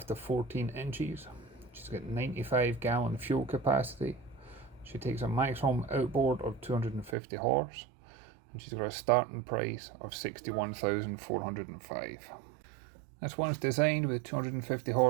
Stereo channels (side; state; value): left; drops out; at 7.2 s